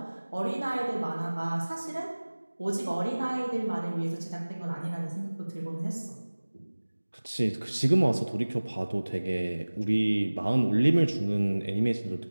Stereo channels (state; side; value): inverted; both; correlation -1.00